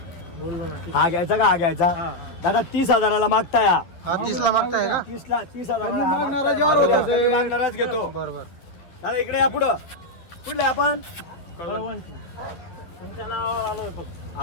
हा घ्यायचा का? हा घ्यायचा. दादा 30,000ला मागताय. हा 30ला मागताय का? 30,000 मागणारच घेतो. बरोबर. दादा इकडे या पुढं. कुठले आपण तुमच्या नावावर आलो होतो.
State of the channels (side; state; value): right; late; 11 ms